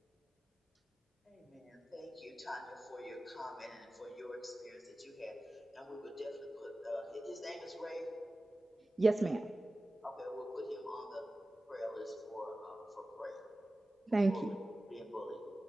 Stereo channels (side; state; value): both; normal; correlation 0.96